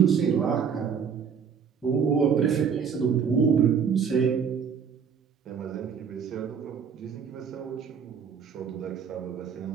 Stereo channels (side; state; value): left; quieter; 6.9 dB